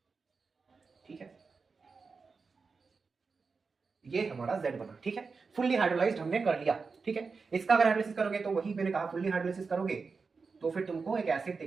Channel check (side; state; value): left; quieter; 4.7 dB